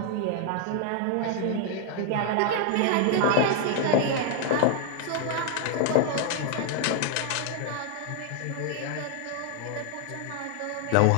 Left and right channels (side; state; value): both; different; correlation 0.00